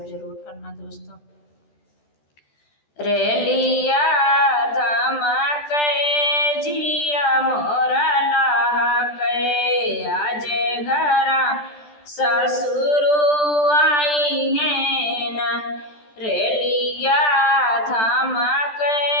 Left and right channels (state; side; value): late; right; 14 ms